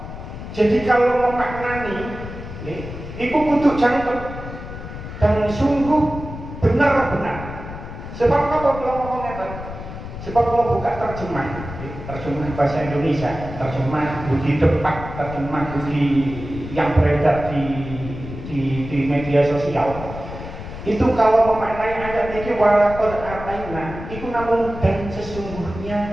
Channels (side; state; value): left; noise; rumble, 10 dB below the sound